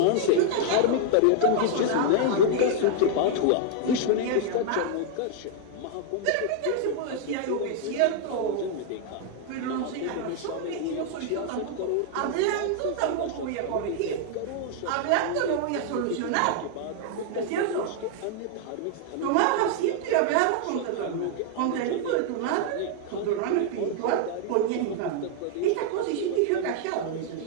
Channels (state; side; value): different; both; correlation 0.00